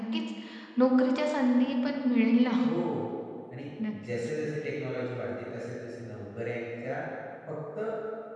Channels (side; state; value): both; identical; correlation 1.00